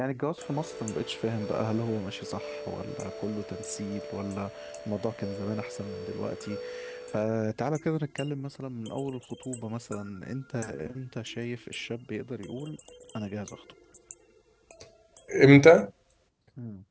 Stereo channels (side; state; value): both; identical; correlation 1.00